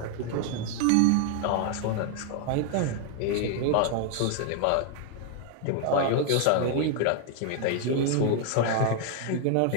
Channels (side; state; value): both; different; correlation 0.00